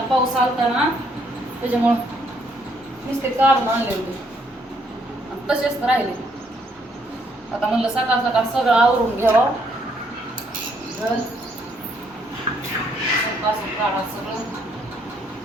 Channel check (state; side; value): normal; both; correlation 0.70